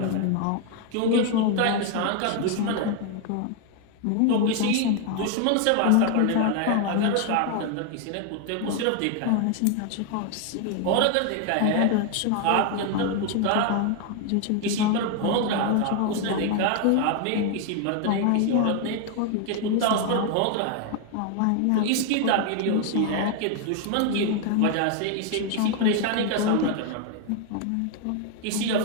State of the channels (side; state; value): both; different; correlation 0.01